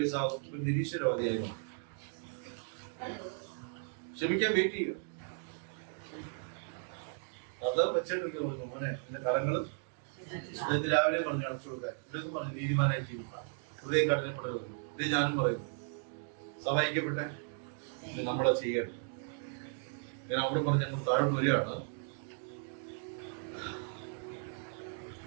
നിരീശ്വരവാദിയായി ക്ഷമിക്കാൻ വെയിറ്റ് ചെയ്യുക. അത് വെച്ചിട്ട് മോനെ എന്റെ കരങ്ങള് രാവിലെ പറഞ്ഞു അടച്ചു കൊടുക്കാൻ. ഇവിടെയൊക്കെ പറഞ്ഞു നീതിമാനായി ജീവിക്കാം, ഹൃദയം കഠിനപ്പെടരുത്. ഇത് ഞാനും പറയുന്നു. സഹായിക്കപ്പെട്ടെ നമ്മളെ ചെയ്യണം. ഞാൻ അവിടെ പറഞ്ഞ് ഞങ്ങൾ താഴെ വരികയാണ്.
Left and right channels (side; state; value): left; silent; 54 dB below the other